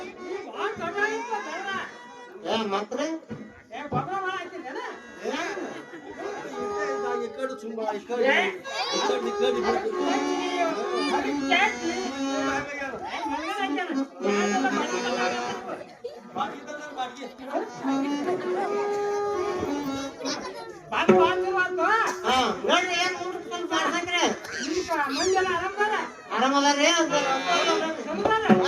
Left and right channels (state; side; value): identical; both; correlation 1.00